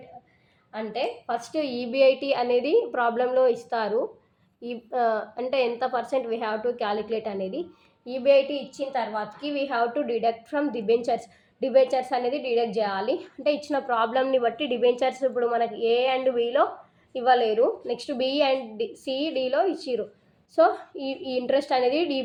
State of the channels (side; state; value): both; identical; correlation 1.00